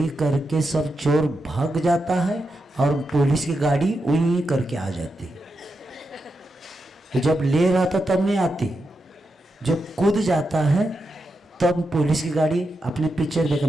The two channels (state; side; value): normal; both; correlation 0.87